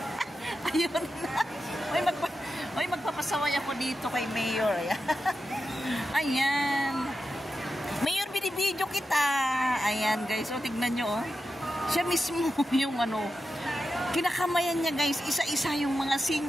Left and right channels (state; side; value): normal; both; correlation 0.90